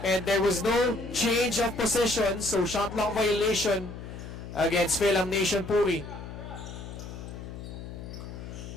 and there was no change of possession, so shot clock violation against FIL Nation PURI.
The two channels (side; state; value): left; noise; hum, 11 dB below the sound